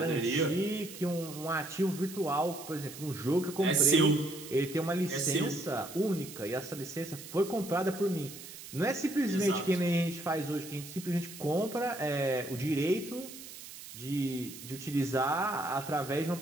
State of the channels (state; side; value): noise; right; hiss, 14 dB below the sound